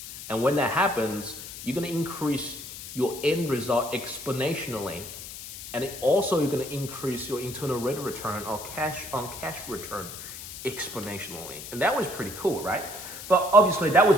And when that happens, you're gonna increase your end result exponentially. And also you're gonna increase your internal rate of return or cash on cash return exponentially. And that was pretty cool, right? But obviously that was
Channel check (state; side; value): noise; left; hiss, 11 dB below the sound